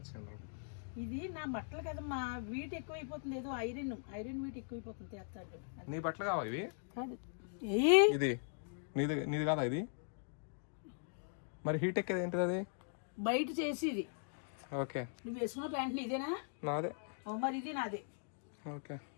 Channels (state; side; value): silent; right; digital silence